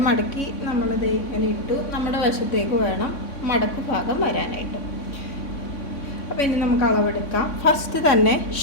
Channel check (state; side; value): late; right; 3.6 ms